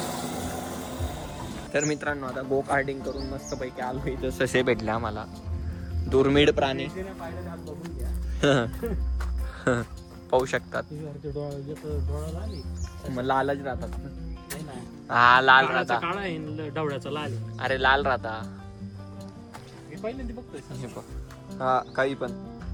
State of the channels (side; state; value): both; identical; correlation 1.00